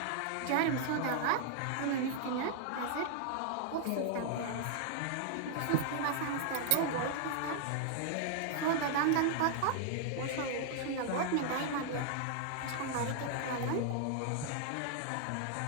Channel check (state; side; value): different; both; correlation -0.01